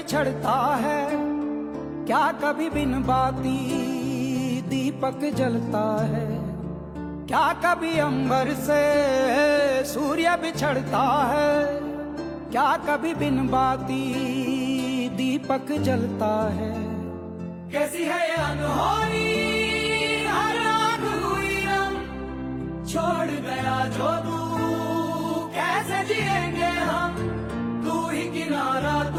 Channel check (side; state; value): both; identical; correlation 1.00